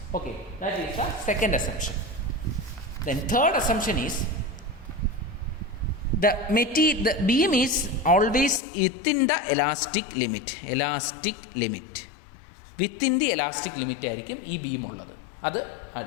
Okay, that is the second assumption. Then third assumption is the beam is always within the elastic limit. Within the elastic limit ആയിരിക്കും ഈ beam ഉള്ളത്. അത്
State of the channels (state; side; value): drops out; right; at 8.6 s